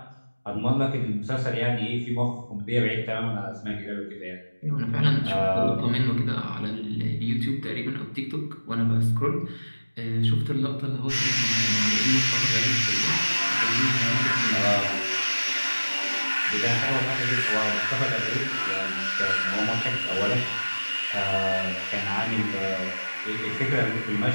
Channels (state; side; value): inverted; both; correlation -1.00